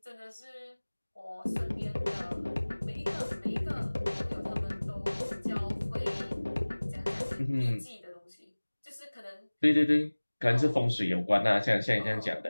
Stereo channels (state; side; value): inverted; both; correlation -1.00